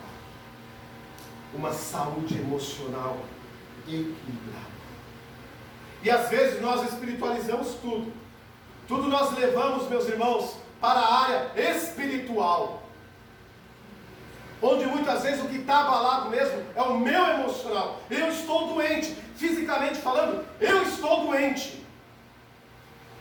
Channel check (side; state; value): both; identical; correlation 1.00